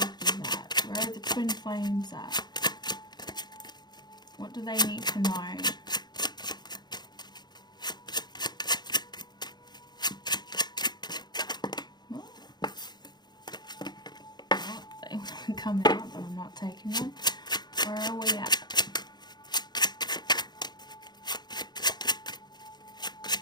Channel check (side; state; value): right; late; 0.21 ms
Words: at? Where are the twin flames at? What do they need to know? They want to come out, but I'm not taking them. Where are we at?